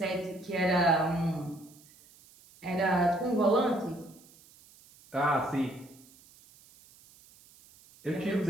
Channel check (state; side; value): noise; right; hiss, 26 dB below the sound